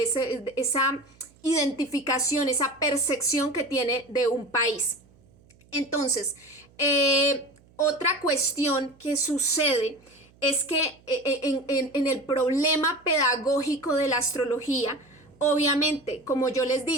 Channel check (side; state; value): right; noise; hum, 29 dB below the sound